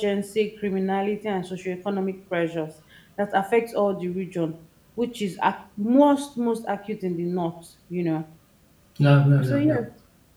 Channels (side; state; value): both; identical; correlation 1.00